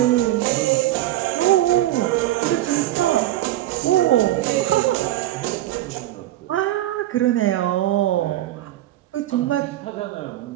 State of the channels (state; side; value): quieter; left; 14.6 dB